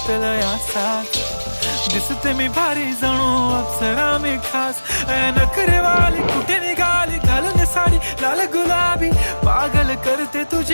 असाच, दिसते मी भारी जणू अप्सरा मी खास. नखरेवाली कुठे निघाली घालून साडी लाल गुलाबी, पागल करते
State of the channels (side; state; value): both; inverted; correlation -1.00